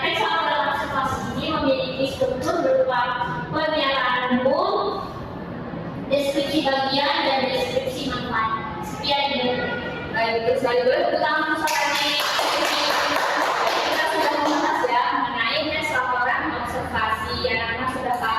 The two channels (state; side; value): identical; both; correlation 1.00